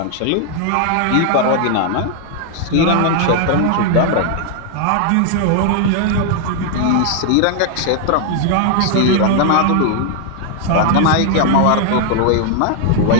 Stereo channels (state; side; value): different; both; correlation 0.00